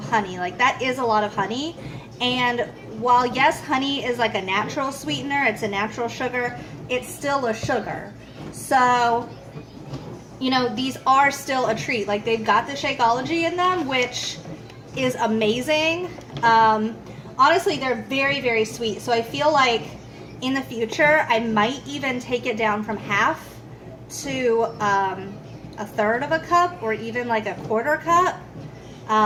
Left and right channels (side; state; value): both; identical; correlation 1.00